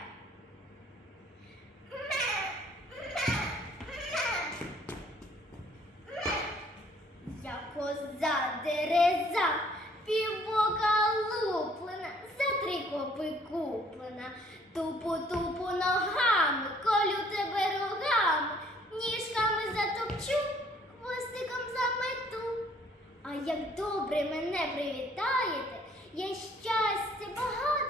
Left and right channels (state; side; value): normal; both; correlation 0.60